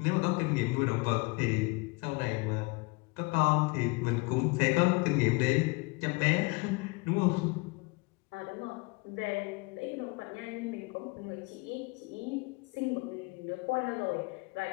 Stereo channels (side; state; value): right; quieter; 26.9 dB